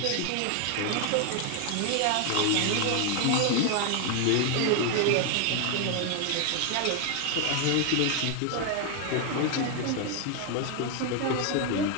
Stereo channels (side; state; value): both; different; correlation 0.01